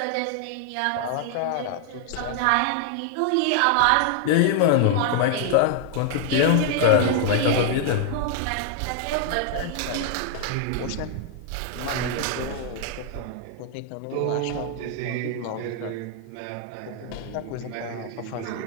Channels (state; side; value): different; both; correlation 0.00